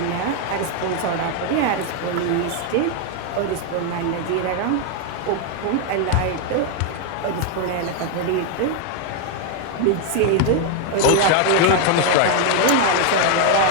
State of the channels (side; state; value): both; different; correlation 0.00